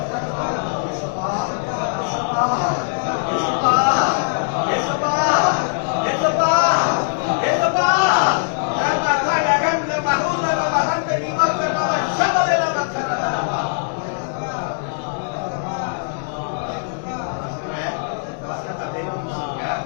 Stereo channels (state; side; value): silent; right; digital silence